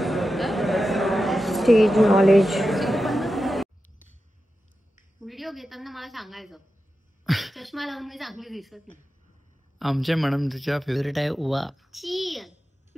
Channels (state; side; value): normal; both; correlation 0.92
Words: Stage knowledge. व्हिडिओ घेताना मला सांगायचं. चष्मा लावून मी चांगली दिसत नाही. आमच्या मॅडम तिच्या फेवरेट आहे ओवा. छी,